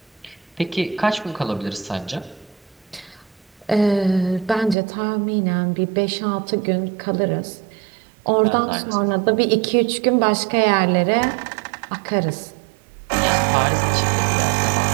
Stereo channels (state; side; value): drops out; left; at 4.8 s